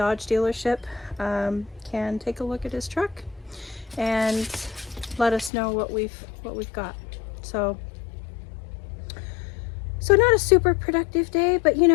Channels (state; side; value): drops out; right; at 5.5 s